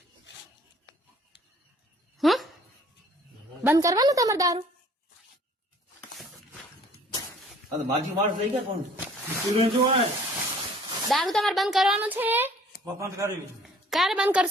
બંધ કરવાનું તમારે દારૂ? માજી માણસ લઈ ગયા કોણ? દારૂ તમારે બંધ કરવાનું છે? બંધ કરી. ક્યારે બંધ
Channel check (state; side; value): normal; both; correlation 0.55